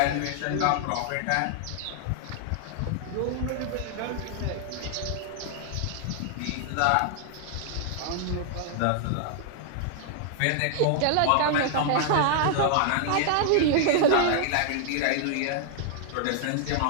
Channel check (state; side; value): different; both; correlation -0.01